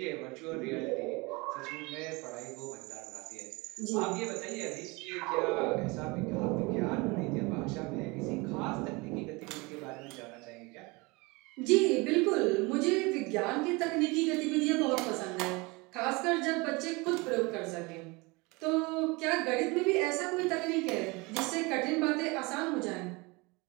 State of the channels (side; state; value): left; quieter; 25.8 dB